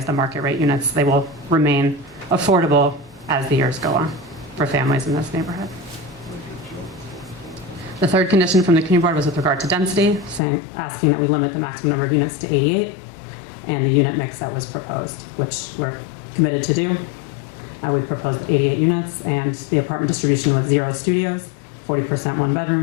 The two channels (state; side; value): drops out; right; at 10.4 s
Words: the market rate units. They will remain affordable as the years go on for families in this neighborhood. The third condition from the community board was with regard to density, asking that we limit the maximum number of units to 88 and the unit mix that was proposed, which we're committed to do. We've proposed 88 units, and the apartment distribution was 0 studios, 40% 1